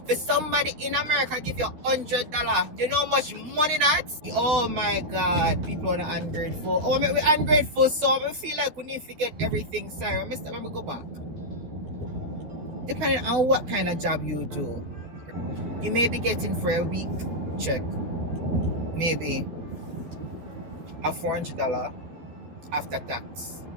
For somebody in America give you $100, you know how much money that's? Oh my God, people are ungrateful. Oh, we're ungrateful, so I feel like we need to get everything. Sorry, Mr. Let me go back. Depending on what kind of job you do, you may be getting for a week check, maybe a $400 after tax.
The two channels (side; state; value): left; late; 12 ms